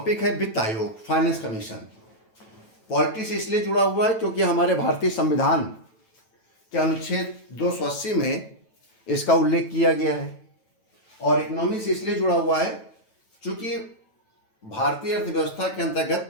है वित्त आयोग, फाइनेंस कमीशन। पॉलिटी से इसलिए जुड़ा हुआ है क्योंकि हमारे भारतीय संविधान के अनुच्छेद 280 में इसका उल्लेख किया गया है, और इकोनॉमी से इसलिए जुड़ा हुआ है क्योंकि भारतीय अर्थव्यवस्था के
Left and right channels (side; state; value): right; late; 9.1 ms